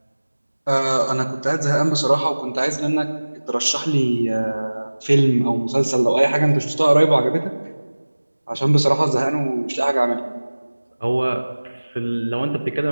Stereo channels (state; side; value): inverted; both; correlation -1.00